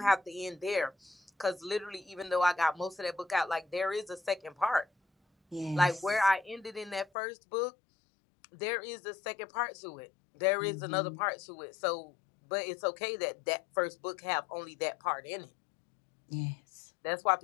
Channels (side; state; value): right; drops out; at 7.1 s